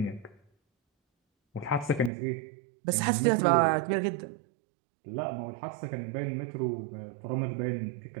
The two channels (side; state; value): left; drops out; at 2.1 s